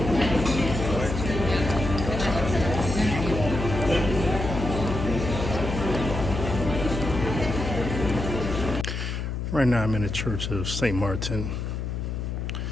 Right now I'm in the Church of St. Martin.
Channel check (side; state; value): left; noise; hum, 4 dB below the sound